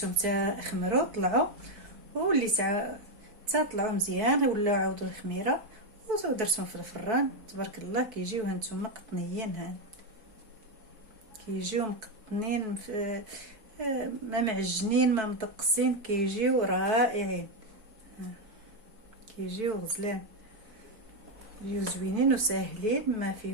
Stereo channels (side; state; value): left; late; 4.6 ms